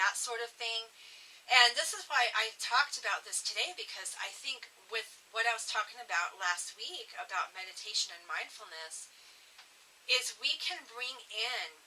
sort of thing. And this is why I talked about this today, because I think with what I was talking about last week about meditation and mindfulness is we can bring in,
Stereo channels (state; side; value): identical; both; correlation 1.00